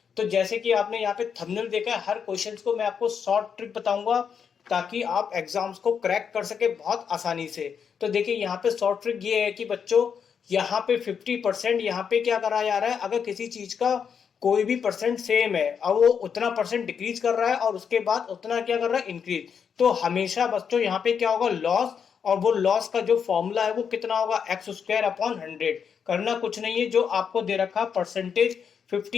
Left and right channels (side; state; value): right; quieter; 7.0 dB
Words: तो जैसे कि आपने यहाँ पे थंबनेल देखा है, हर क्वेश्चन को मैं आपको शॉर्ट ट्रिक बताऊंगा ताकि आप एग्जाम्स को क्रैक कर सके बहुत आसानी से। तो देखिए यहाँ पे शॉर्ट ट्रिक ये है कि बच्चों, यहाँ पे 50% यहाँ पे क्या करा जा रहा है, अगर किसी चीज का कोई भी परसेंट सेम है और वो उतना परसेंट डिक्रीज कर रहा है और उसके बाद उतना क्या कर रहा है, इंक्रीज, तो हमेशा बच्चों यहाँ पे क्या होगा, लॉस। और वो लॉस का जो फॉर्मूला है वो कितना होगा, एक्स स्क्वायर अपॉन 100। करना कुछ नहीं है, जो आपको दे रखा परसेंटेज